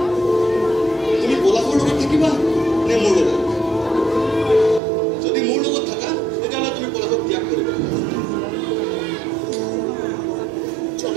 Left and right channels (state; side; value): drops out; left; at 4.8 s